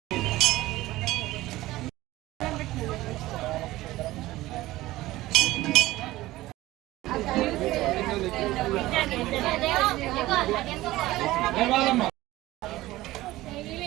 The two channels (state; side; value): quieter; left; 17.3 dB